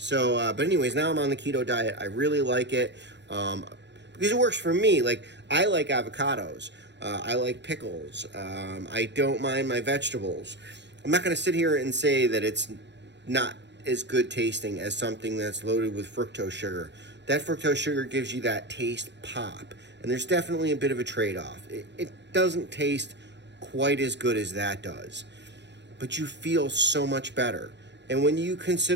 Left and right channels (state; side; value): late; left; 0.51 ms